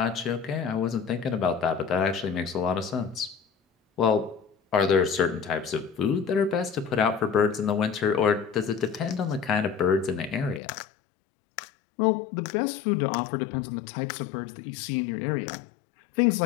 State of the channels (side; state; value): right; drops out; at 10.6 s